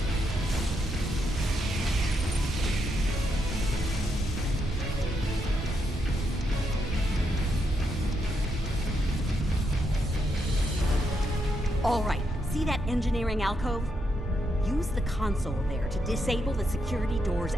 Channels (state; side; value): normal; both; correlation 0.80